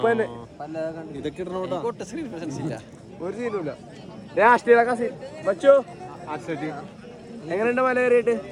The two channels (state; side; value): identical; both; correlation 1.00